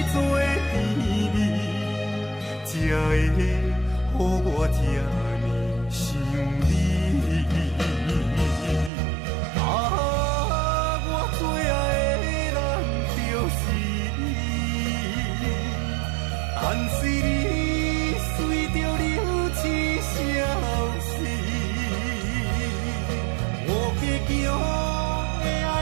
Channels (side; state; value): left; drops out; at 8.9 s